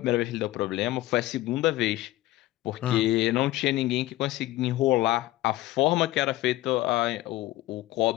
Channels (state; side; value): quieter; right; 17.1 dB